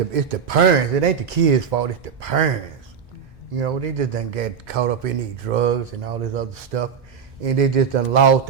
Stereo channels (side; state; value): left; quieter; 6.9 dB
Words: parents. It ain't the kids' fault. It's the parents. You know, they just done get caught up in these drugs and all this other stuff, and they just done lost